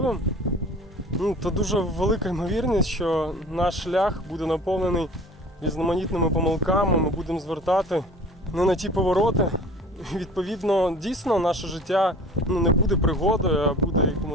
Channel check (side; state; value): both; normal; correlation 0.45